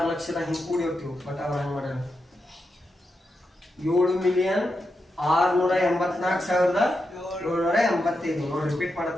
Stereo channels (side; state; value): both; normal; correlation 0.87